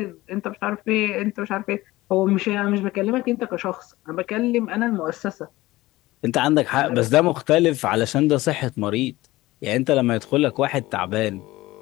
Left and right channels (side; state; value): right; quieter; 18.4 dB